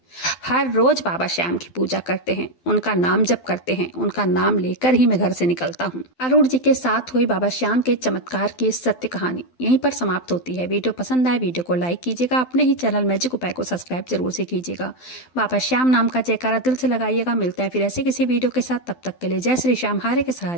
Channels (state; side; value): late; right; 12 ms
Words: हर रोज बाबा श्याम की पूजा करते हैं, उनका नाम जप करते हैं, उनका नाम लेकर ही मैं घर से निकलता हूँ। अरुण जी के साथ हुई बाबा श्याम के चमत्कार की सत्य कहानी यहीं पर समाप्त होती है। वीडियो पसंद आए, वीडियो को लाइक कीजिएगा, अपने ही चैनल मैजिक उपाय को सब्सक्राइब जरूर से कीजिएगा। बाबा श्याम नाम का जयकारा दिल से लगाइएगा। मिलते हैं फिर ऐसे किसी वीडियो के साथ, तब तक के लिए जय श्री श्याम, हारे के